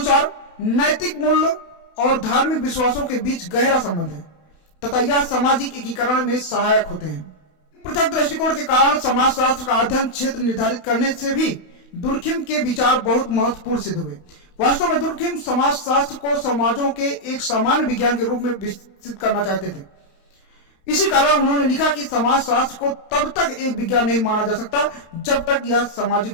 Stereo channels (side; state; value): right; late; 31 ms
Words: नैतिक मूल्य और धार्मिक विश्वासों के बीच गहरा संबंध है तथा यह सामाजिक एकीकरण में सहायक होते हैं। पृथक दृष्टिकोण के कारण समाजशास्त्र का अध्ययन क्षेत्र निर्धारित करने से भी दुर्खिम के विचार बहुत महत्वपूर्ण सिद्ध हुए। वास्तव में दुर्खिम समाजशास्त्र को समाजों के एक सामान्य विज्ञान के रूप में विकसित करना चाहते थे। इसी कारण उन्होंने लिखा कि समाजशास्त्र को तब तक एक विज्ञान नहीं माना जा सकता जब तक यह